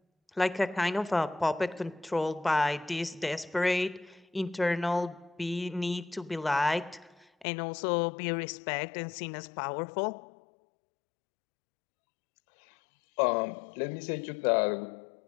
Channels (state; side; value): drops out; right; at 7.5 s